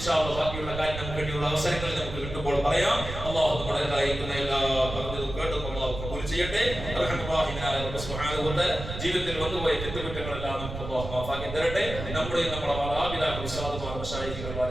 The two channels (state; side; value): noise; right; rumble, 8 dB below the sound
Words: അല്ലാഹ് ബാക്കിയുള്ള കാര്യം നമുക്ക് വേണ്ടിയുള്ള അവസരങ്ങളിൽ നമുക്ക് കിട്ടുമ്പോൾ പറയാം. അല്ലാഹു നമ്മുടെ കാര്യക്കുന്ന എല്ലാ പറഞ്ഞതും കേട്ടും അല്ലാഹു കബൂൽ ചെയ്യട്ടെ. റഹ്മാനായ റബ്ബ് സുബ്ഹാനഹു വ തആല ജീവിതത്തിൽ വന്നുപോയ തെറ്റുകുറ്റങ്ങളെല്ലാം നമുക്ക് അല്ലാഹു മാഫാക്കി തരട്ടെ. നമ്മുടെ മാതാപിതാക്കൾ, ഉസ്താദുമാർ, മശായിഖുകൾ,